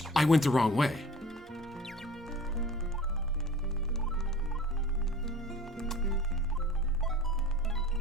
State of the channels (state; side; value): normal; both; correlation 0.42